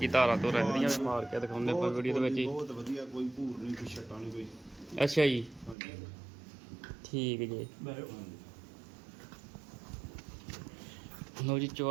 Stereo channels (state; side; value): drops out; left; at 5.8 s